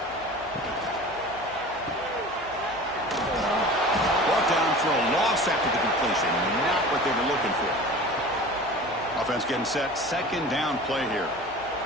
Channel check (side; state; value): right; noise; hum, 23 dB below the sound